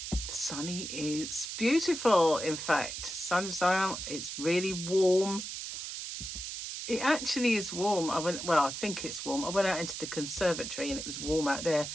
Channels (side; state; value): right; noise; hiss, 7 dB below the sound